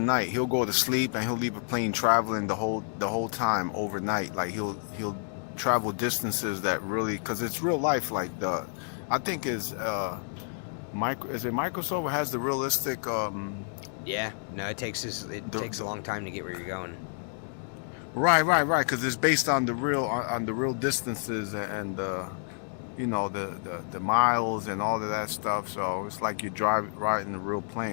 He'll go to sleep and he'll leave a plane traveling the whole time overnight. Like he'll travel distances that really, because it's real life. Like I think is it Microsoft has the realistic. Yeah, no, it takes a long time to get where you're going. Right, because it's based on the real distances and you know the miles and all of that stuff. So it's like you riding a real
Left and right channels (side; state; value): right; silent; 58 dB below the other